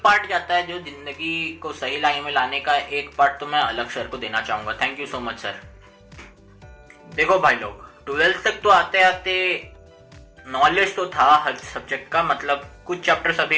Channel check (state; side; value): identical; both; correlation 1.00